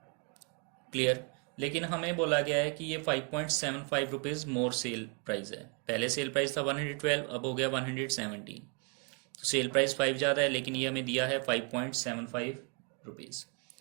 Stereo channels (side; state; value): left; quieter; 37.7 dB